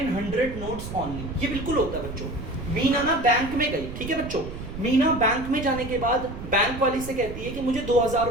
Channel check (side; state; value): right; noise; rumble, 10 dB below the sound